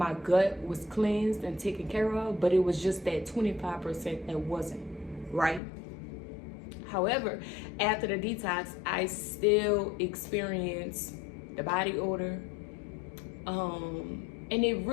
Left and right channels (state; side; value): drops out; right; at 5.6 s